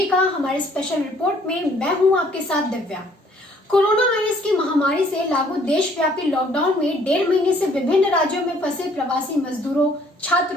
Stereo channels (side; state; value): both; normal; correlation 0.61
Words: का हमारे स्पेशल रिपोर्ट में। मैं हूं आपके साथ दिव्या। कोरोना वायरस की महामारी से लागू देशव्यापी लॉकडाउन में 1.5 महीने से विभिन्न राज्यों में फंसे प्रवासी मजदूरों,